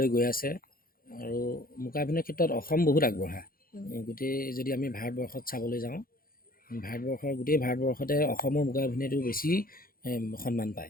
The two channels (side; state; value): right; late; 0.42 ms